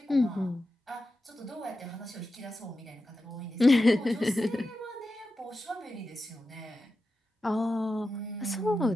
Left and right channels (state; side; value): normal; both; correlation 0.91